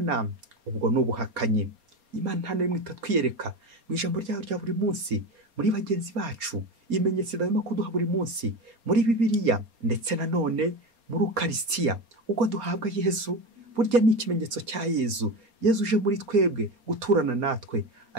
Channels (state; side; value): late; left; 4.3 ms